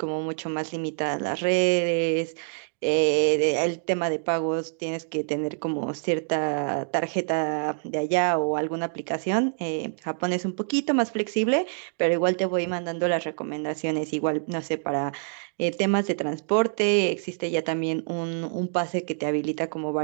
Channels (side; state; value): left; silent; digital silence